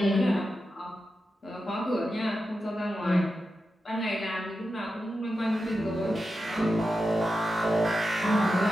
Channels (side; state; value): both; normal; correlation 0.90